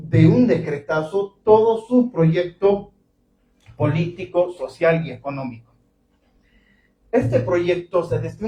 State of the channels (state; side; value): identical; both; correlation 1.00